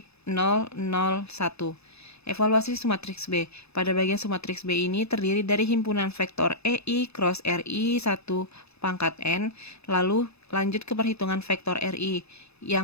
0, 0, 1. Evaluasi sumatriks B. Pada bagian sumatriks B ini terdiri dari himpunan vektor EI cross RI 1 pangkat N, lalu lanjut ke perhitungan vektor RI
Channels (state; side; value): late; right; 0.79 ms